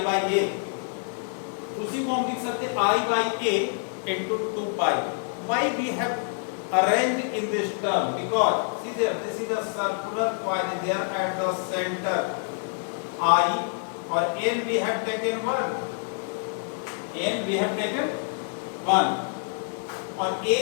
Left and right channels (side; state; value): right; silent; 59 dB below the other